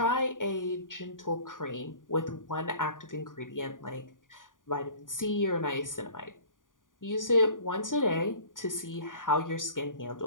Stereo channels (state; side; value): late; right; 0.88 ms